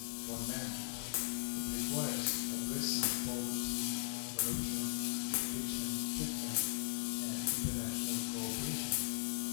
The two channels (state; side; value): silent; right; digital silence